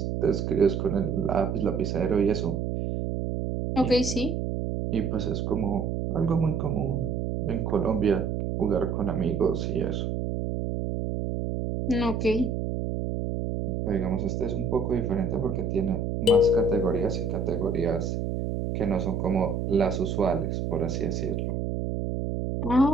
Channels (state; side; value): noise; right; hum, 2 dB below the sound